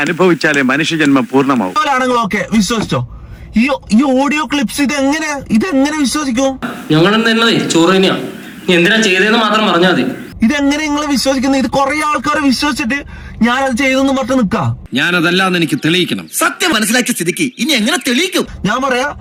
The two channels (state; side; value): identical; both; correlation 1.00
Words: അനുഭവിച്ചാലേ മനുഷ്യജന്മം പൂർണ്ണമാവും. ആണെങ്കിൽ ഓക്കെ വിശ്വസിച്ചോ. ഈ ഓഡിയോ ക്ലിപ്സ് ഇതെങ്ങനെ വിശ്വസിക്കും? ഞങ്ങൾ ചോറ് തന്നെയാ, എന്തിനാ ചെയ്തതെന്ന് മാത്രം പറഞ്ഞാൽ മതി. ഇതെങ്ങനെ നിങ്ങൾ വിശ്വസിക്കുന്നത്? ഇത് കുറെ ആൾക്കാരെ വിശ്വസിച്ചിട്ട് ഞാനത് ചെയ്തെന്ന് പറഞ്ഞ് നിക്കാം. ഞാനതല്ലാന്ന് എനിക്ക് തെളിയിക്കണം. സത്യം മനസ്സിലാക്കിയ സ്ഥിതിക്ക് ഇനി എങ്ങനെ തെളിയിക്കും? ഞാൻ പറയാ